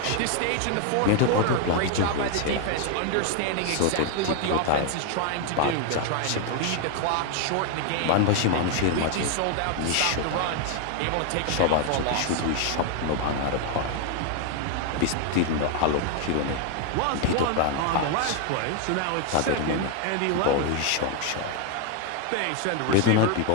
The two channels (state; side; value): different; both; correlation 0.01